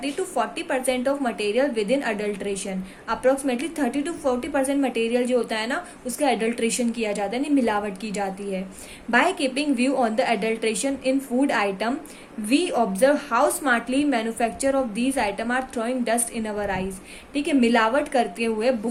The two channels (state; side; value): identical; both; correlation 1.00